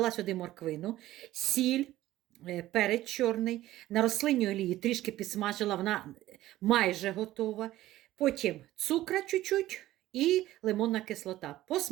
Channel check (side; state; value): left; quieter; 15.2 dB